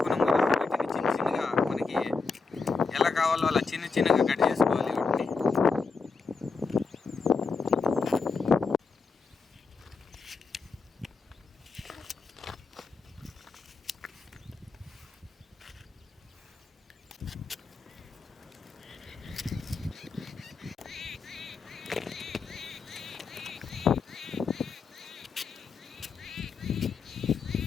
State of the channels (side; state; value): right; quieter; 4.7 dB